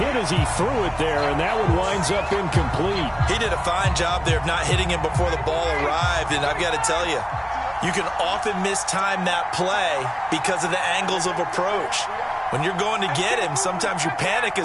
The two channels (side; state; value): both; identical; correlation 1.00